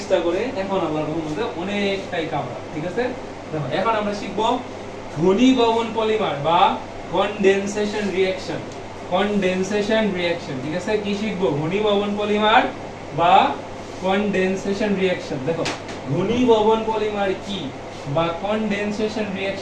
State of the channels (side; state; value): both; identical; correlation 1.00